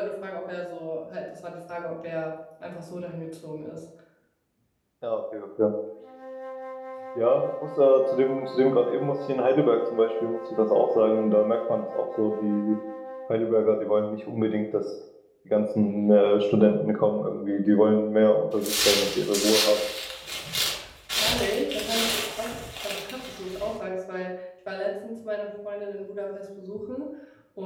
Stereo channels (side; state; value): both; identical; correlation 1.00